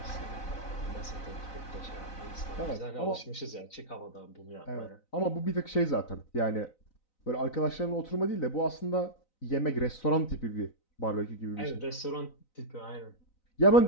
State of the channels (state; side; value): late; right; 3.9 ms